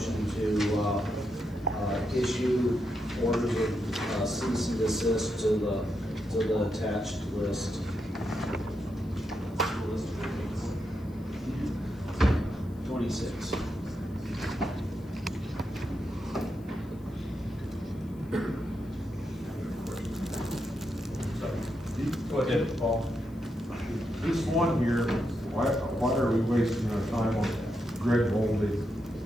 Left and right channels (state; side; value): noise; left; hiss, 29 dB below the sound